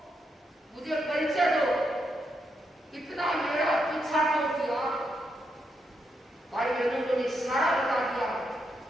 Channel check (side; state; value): both; normal; correlation 0.81